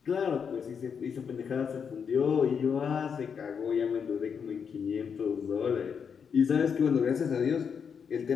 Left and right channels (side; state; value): right; quieter; 6.7 dB